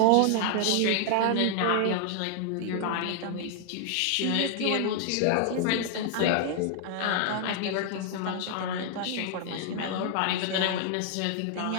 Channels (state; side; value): different; both; correlation 0.00